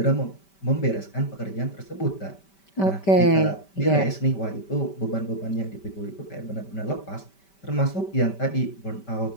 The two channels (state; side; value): late; right; 5.1 ms